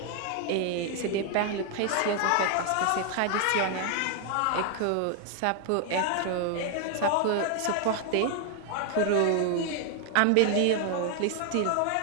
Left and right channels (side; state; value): both; different; correlation 0.00